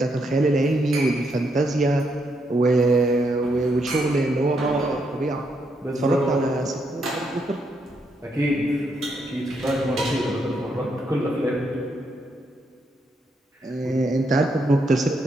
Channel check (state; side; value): normal; both; correlation 0.78